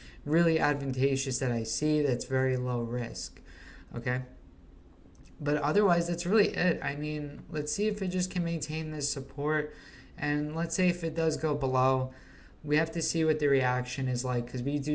really advantageous that I see that's very low risk, okay? But otherwise, that's really it. I mean, let's see if it just can maintain this support. And let's say if it does go below, we have to see what the reaction is like, because we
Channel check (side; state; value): both; identical; correlation 1.00